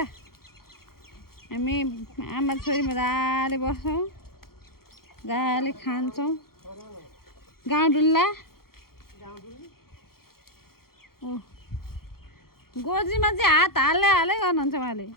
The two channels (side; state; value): right; late; 0.93 ms